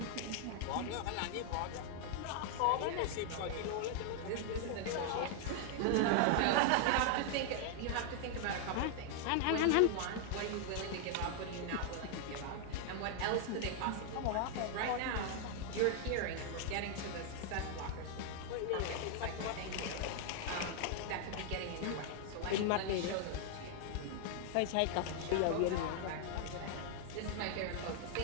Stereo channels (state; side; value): different; both; correlation 0.00